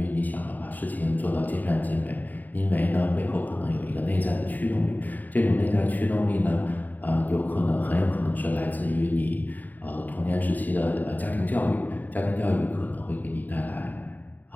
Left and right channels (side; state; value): right; late; 0.085 ms